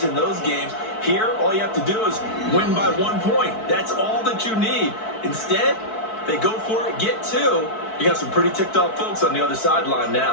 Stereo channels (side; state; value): right; late; 4.6 ms